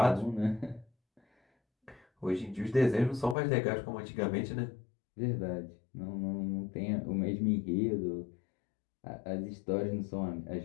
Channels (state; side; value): drops out; right; at 3.4 s